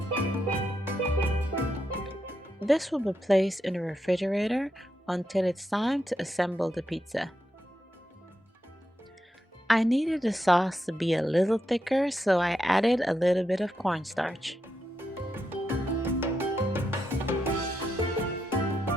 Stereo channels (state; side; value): normal; both; correlation 0.84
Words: This will be placed in the refrigerator until it's time to assemble the pizza. I needed the sauce to be a little thicker, so I added a little bit of cornstarch.